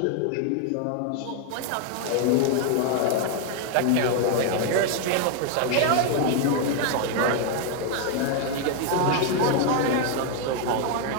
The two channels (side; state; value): both; different; correlation 0.00